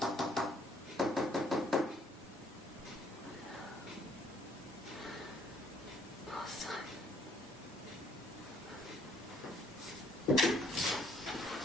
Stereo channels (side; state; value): both; normal; correlation 0.65